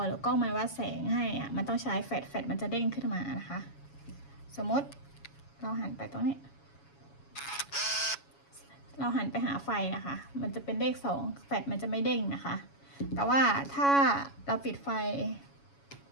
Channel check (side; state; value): right; late; 7.2 ms